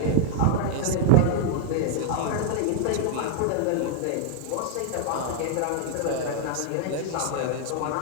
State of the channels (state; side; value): different; both; correlation -0.01